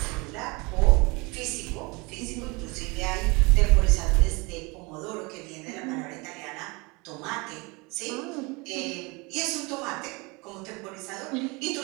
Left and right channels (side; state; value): left; quieter; 26.9 dB